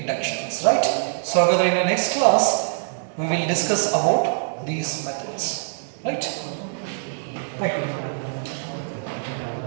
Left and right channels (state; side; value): silent; left; digital silence